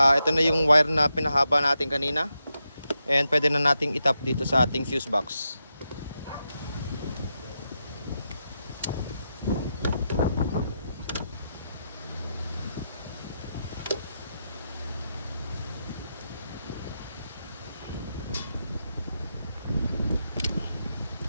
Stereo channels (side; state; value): both; inverted; correlation -0.86